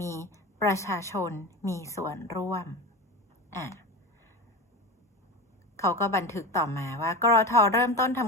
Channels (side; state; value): both; normal; correlation 0.26